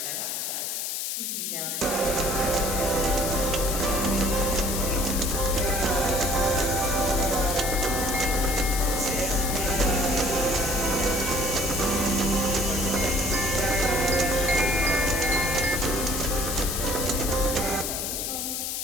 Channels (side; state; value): left; noise; hiss, 2 dB below the sound